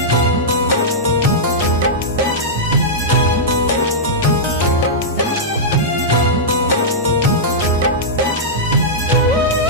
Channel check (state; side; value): normal; both; correlation -0.11